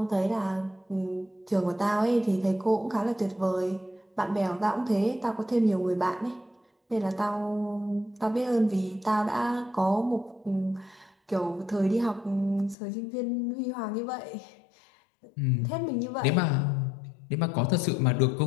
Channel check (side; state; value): right; drops out; at 12.8 s